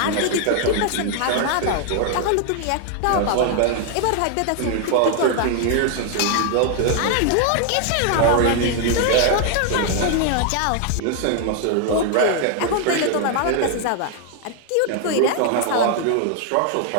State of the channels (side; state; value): both; different; correlation 0.00